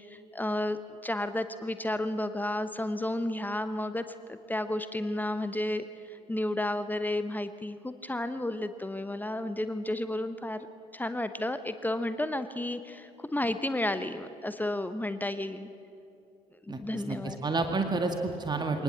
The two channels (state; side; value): normal; both; correlation 0.80